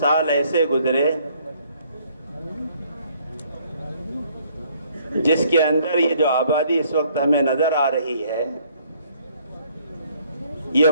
ایسے گزرے جس کے اندر یہ جو آبادی اس وقت ہمیں نظر آ رہی ہے یہ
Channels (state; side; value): inverted; both; correlation -0.64